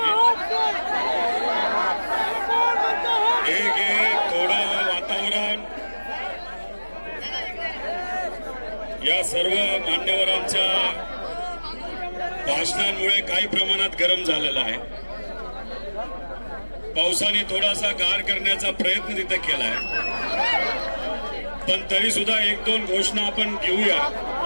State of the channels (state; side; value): inverted; both; correlation -1.00